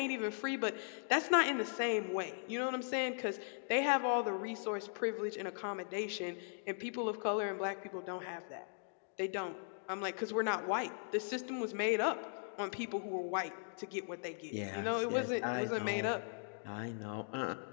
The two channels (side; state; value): right; silent; digital silence